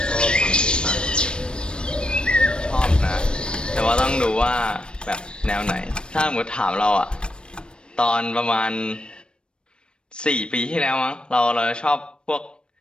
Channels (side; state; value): right; late; 0.054 ms